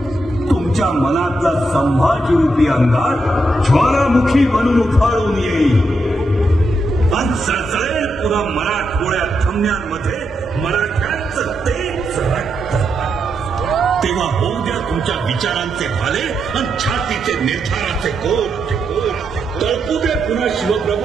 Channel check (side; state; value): both; normal; correlation 0.83